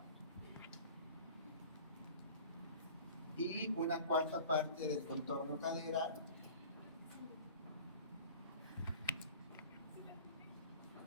y una cuarta parte del contorno cadera,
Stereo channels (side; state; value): both; inverted; correlation -0.43